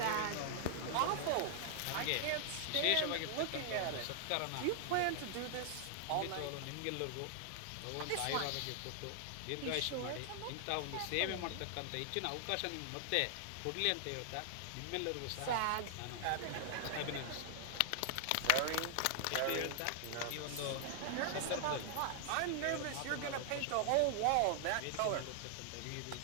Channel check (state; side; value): different; both; correlation 0.00